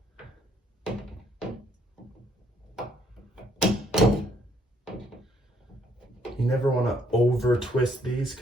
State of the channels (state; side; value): normal; both; correlation 0.67